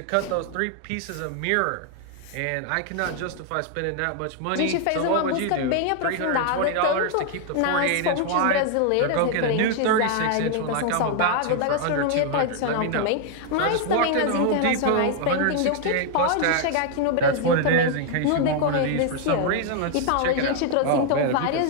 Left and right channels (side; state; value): both; different; correlation 0.00